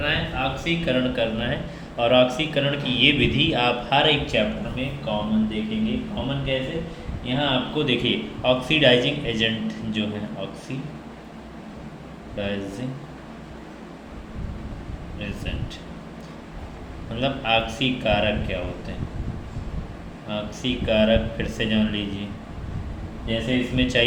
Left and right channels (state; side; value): identical; both; correlation 1.00